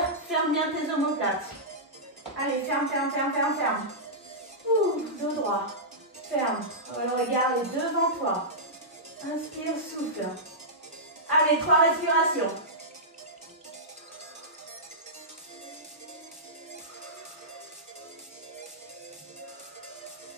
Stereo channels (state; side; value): normal; both; correlation -0.14